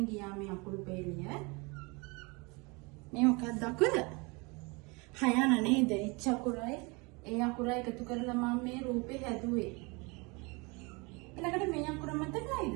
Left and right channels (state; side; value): quieter; left; 28.1 dB